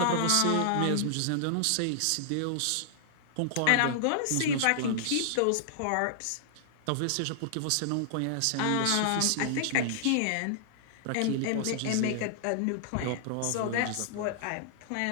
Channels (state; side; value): different; both; correlation -0.01